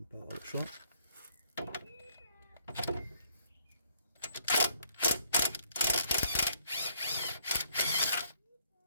va pas avoir le choix.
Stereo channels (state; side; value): inverted; both; correlation -0.68